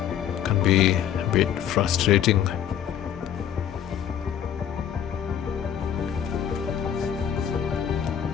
can be a bit frustrating.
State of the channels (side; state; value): right; quieter; 9.4 dB